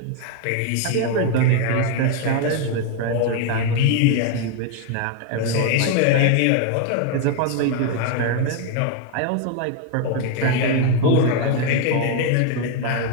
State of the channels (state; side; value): different; both; correlation 0.01